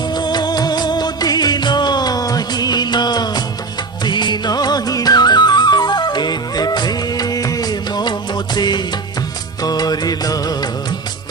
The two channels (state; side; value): quieter; left; 3.9 dB